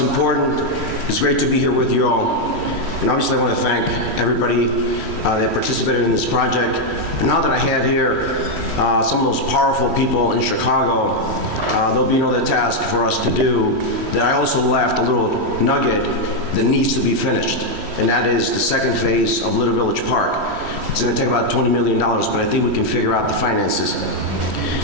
It's great to be here with you all. And obviously I want to thank everybody that participated in this project. And now that I have here some of those powerful people in Chicago, there'll be another task for us to do that I also left a little nugget that needs to be finished. And that is the second phase of Little Village Park. It's going to take about $20 million, but I think we can figure out the finances.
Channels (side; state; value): left; late; 3.1 ms